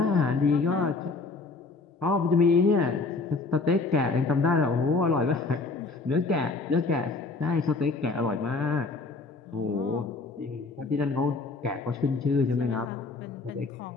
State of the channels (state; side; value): quieter; right; 3.8 dB